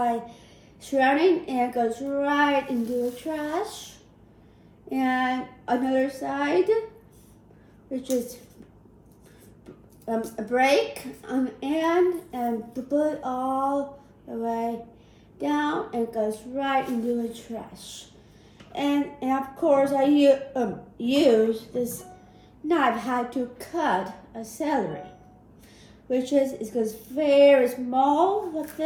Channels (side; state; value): both; identical; correlation 1.00